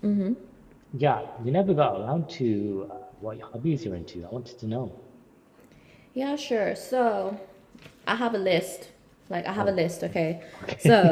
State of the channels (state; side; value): identical; both; correlation 1.00